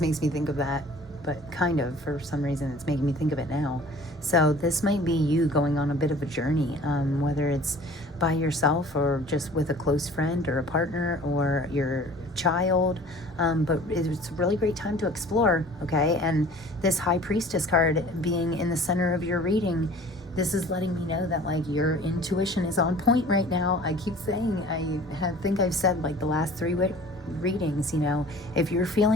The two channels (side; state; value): both; normal; correlation 0.47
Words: me think of that, but kind of, for some reason, it's making me think of it now. So this might be you going on a bit of a journey, whether it's by yourself or just with a close friend or a partner or your child. But it's a really great time to explore, okay? And this High Priestess card being in the center of your reading, this is letting me know that like your intuition is on point right now. I keep saying, I think I've said like the last 3 readings, you know, if you're